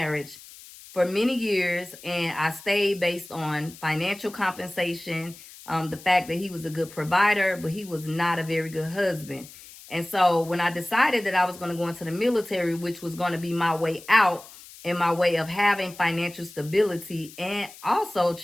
for many years, and I stayed based on financial compensation, the fact that he was a good provider, but he was not a very good husband. And so when I decided that I was going to go into the military, which was going to be my way out, in my way of having financial stability and also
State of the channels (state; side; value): noise; left; hiss, 19 dB below the sound